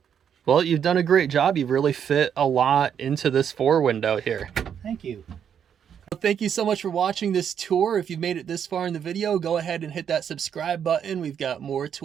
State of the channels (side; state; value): left; quieter; 8.3 dB